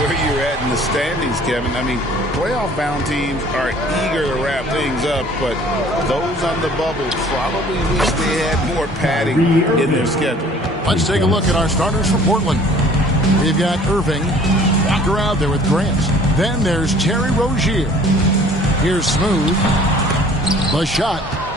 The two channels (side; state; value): both; normal; correlation 0.52